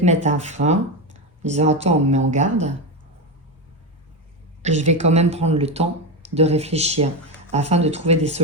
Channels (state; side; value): normal; both; correlation 0.13